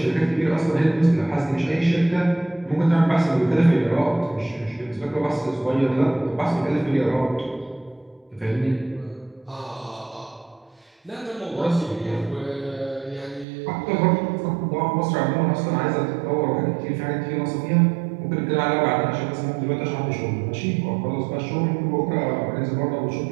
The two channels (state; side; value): drops out; left; at 13.5 s